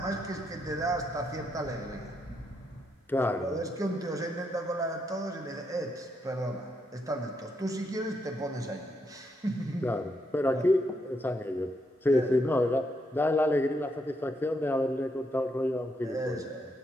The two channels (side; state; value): both; normal; correlation 0.78